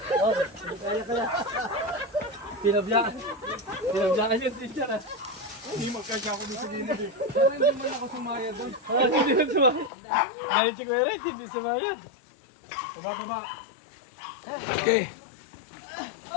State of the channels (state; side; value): drops out; right; at 9.9 s